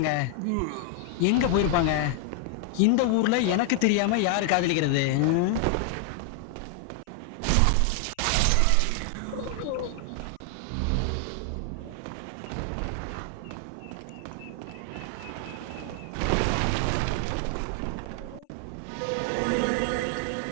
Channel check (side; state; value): both; different; correlation 0.00